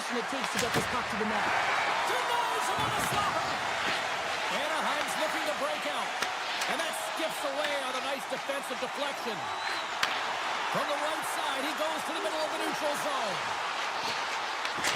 it takes to get this puck to the net. Denies him on a slapper. Anaheim's looking to break out. And that skips away on a nice defensive deflection. From the right side, he goes to the middle of the neutral zone.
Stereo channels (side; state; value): both; identical; correlation 1.00